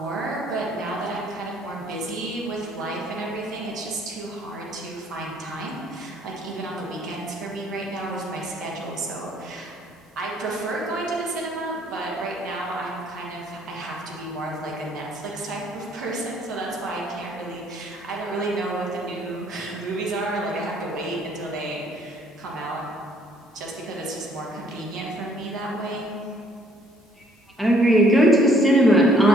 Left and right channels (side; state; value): both; normal; correlation 0.62